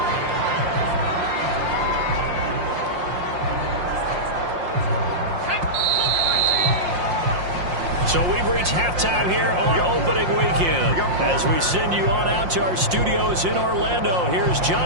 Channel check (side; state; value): left; late; 5.6 ms